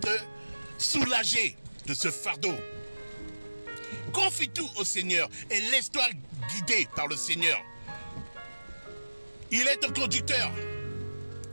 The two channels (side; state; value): both; inverted; correlation -1.00